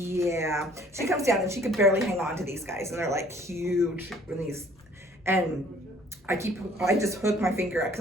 She comes down and she could barely hang on to these guys, and they're like huge and I just hook my finger up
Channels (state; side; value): normal; both; correlation 0.56